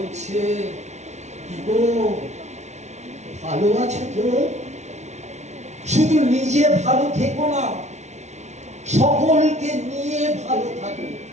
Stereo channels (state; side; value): late; left; 0.32 ms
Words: কি গো ভালো আছো তো? শুধু নিজে ভালো থেকো না, সকলকে নিয়ে ভালো থাকো।